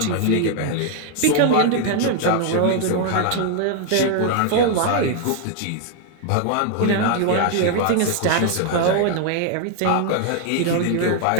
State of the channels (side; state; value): both; different; correlation 0.00